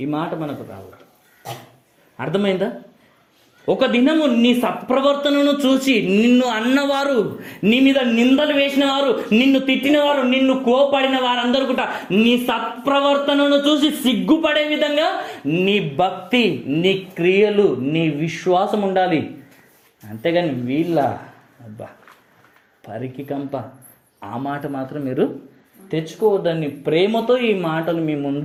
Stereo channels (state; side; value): identical; both; correlation 1.00